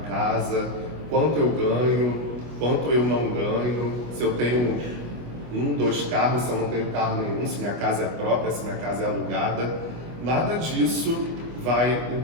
casa, quanto eu ganho, quanto eu não ganho, se eu tenho 1, 2 carros, se eu não tenho carro nenhum, se minha casa é própria, se minha casa é alugada. Nada disso vai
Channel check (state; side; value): late; left; 25 ms